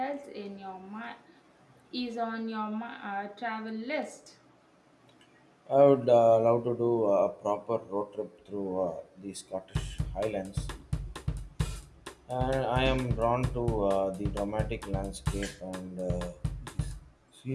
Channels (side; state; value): both; identical; correlation 1.00